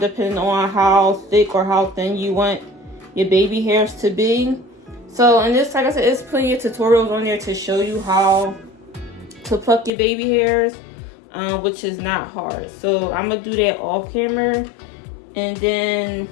on how thick or how thin you want your baby hairs to be. So, and this, like I said, there's plenty of tutorials on there to show you how to pluck your baby hairs, which is not hard. So I'm gonna do that off camera, and then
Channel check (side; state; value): right; drops out; at 9.9 s